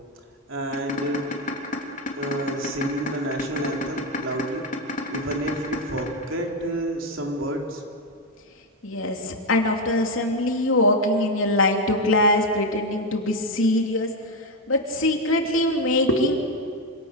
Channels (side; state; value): both; normal; correlation 0.08